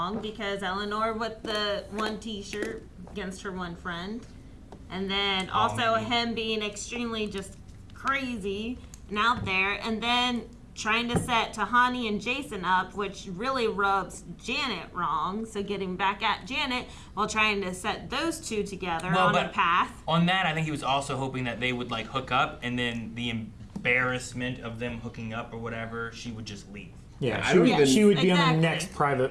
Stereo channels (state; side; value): identical; both; correlation 1.00